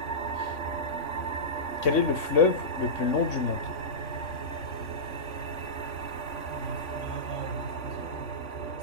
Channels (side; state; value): right; late; 3.6 ms